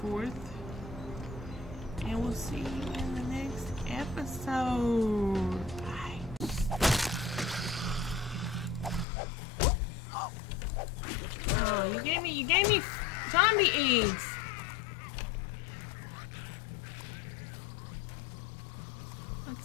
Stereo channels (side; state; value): right; drops out; at 9.1 s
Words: forth. And we'll see you in the next episode. Bye. Oh, you gave me zombie eggs.